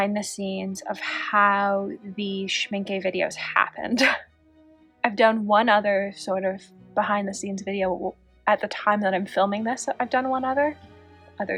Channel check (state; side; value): identical; both; correlation 1.00